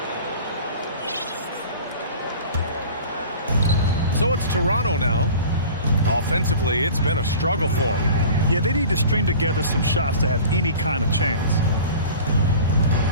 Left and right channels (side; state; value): both; inverted; correlation -0.40